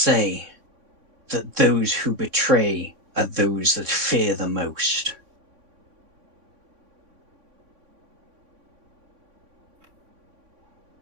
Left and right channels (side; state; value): left; late; 3.5 ms